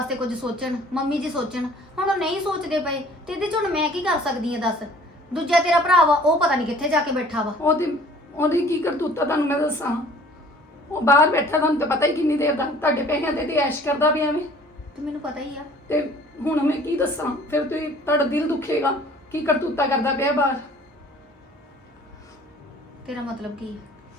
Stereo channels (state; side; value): normal; both; correlation 0.52